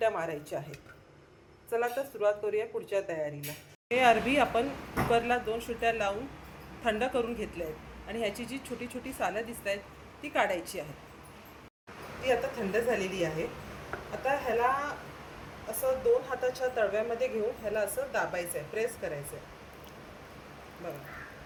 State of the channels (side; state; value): both; identical; correlation 1.00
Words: मारायच्या आहेत। चला तर सुरुवात करूया पुढच्या तयारीला। हे अरबी आपण कुकरला 2 शिट्ट्या लावून थंड करून घेतले आहेत आणि ह्याची जी छोटी छोटी सालं दिसत आहेत ती काढायची आहेत। ती आता थंड झालेली आहे। आता ह्याला असं 2 हाताच्या तळव्यामध्ये घेऊन ह्याला असं दाबायचं आहे, प्रेस करायचं आहे। बघा,